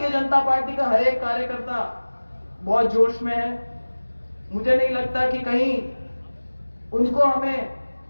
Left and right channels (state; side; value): inverted; both; correlation -1.00